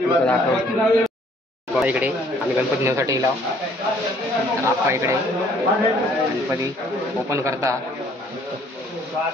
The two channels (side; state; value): both; normal; correlation 0.61